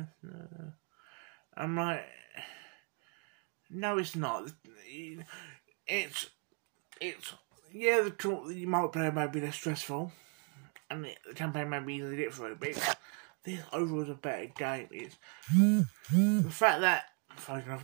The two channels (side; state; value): left; quieter; 36.8 dB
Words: I'm like, no, it's not. It's yeah, the multiplayer may be less stressful, and the campaign may be easier to get through, but this overall is a better game. It's the fact that